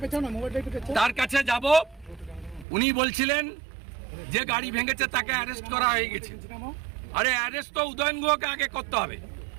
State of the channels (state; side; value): drops out; left; at 2.7 s